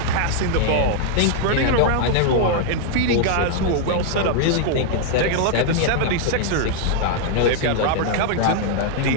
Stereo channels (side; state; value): both; different; correlation 0.00